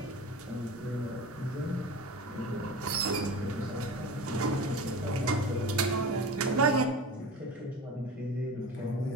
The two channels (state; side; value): normal; both; correlation 0.33